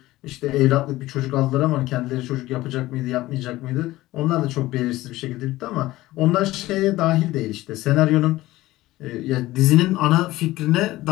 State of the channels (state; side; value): quieter; right; 17.4 dB